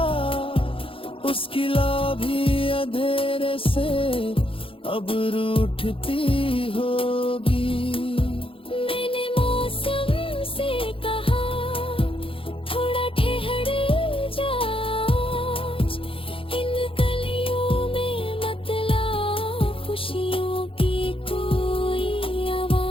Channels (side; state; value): right; late; 0.26 ms